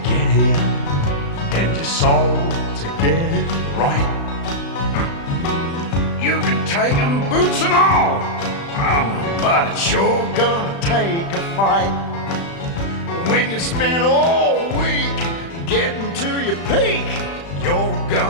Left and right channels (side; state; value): right; late; 35 ms